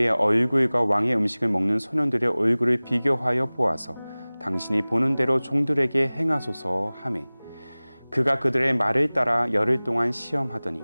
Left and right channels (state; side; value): inverted; both; correlation -0.99